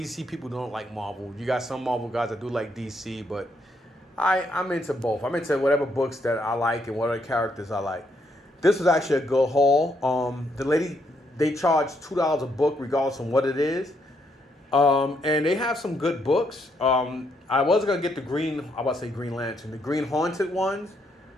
people don't like Marvel. You got some Marvel guys that do like DC, but I'm into both. I'm into whatever books that I like and whatever characters I like. This was actually a good haul. The lady, they charge $2 a book regardless of what it is. And they have some good books. I was going to get the Green Lantern, the Green Haunted ones.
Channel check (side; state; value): both; normal; correlation 0.75